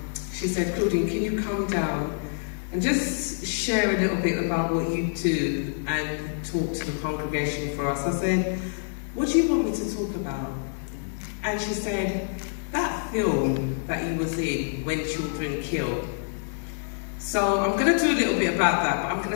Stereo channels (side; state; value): right; silent; digital silence